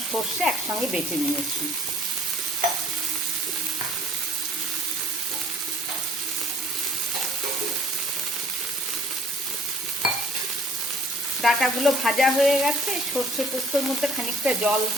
সর্ষে একসঙ্গে বেটে নিয়েছি। ডাটাগুলো ভাজা হয়ে গেছে। সর্ষে পোস্তর মধ্যে খানিকটা জল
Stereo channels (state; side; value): normal; both; correlation 0.55